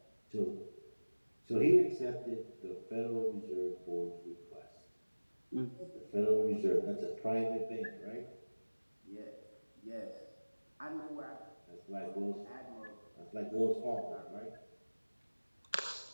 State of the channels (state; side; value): inverted; both; correlation -1.00